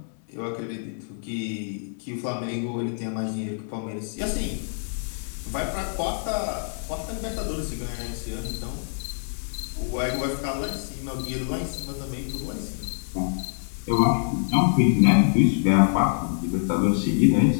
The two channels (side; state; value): right; silent; digital silence